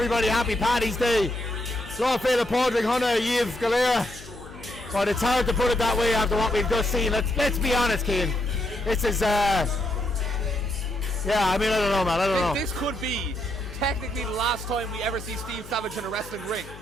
happy Paddy's Day. Lawfeil Padraig Hunna, Yves Galera. But it's hard to put it that way after what we've just seen. Let's be honest, Keane. This is yeah, I mean, I don't know, man. I don't know. This could be technically the last time we ever see Steve Savage in a wrestling ring.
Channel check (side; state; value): left; noise; hum, 17 dB below the sound